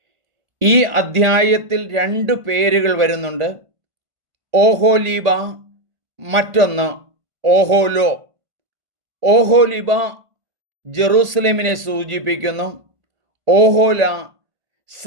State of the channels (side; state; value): left; late; 1.5 ms